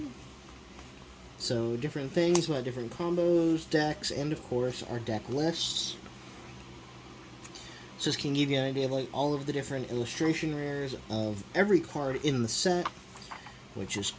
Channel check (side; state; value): both; identical; correlation 1.00